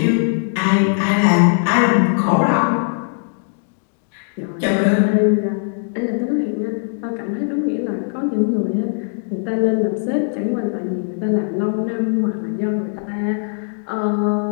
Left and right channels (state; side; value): silent; right; digital silence